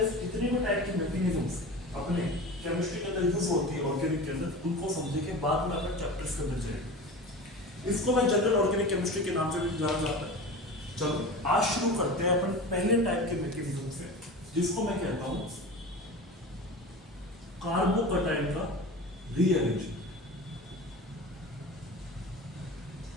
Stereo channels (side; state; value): both; normal; correlation 0.32